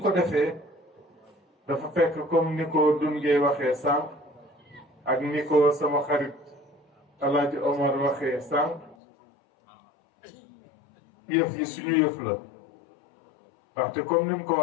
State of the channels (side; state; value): right; drops out; at 9.0 s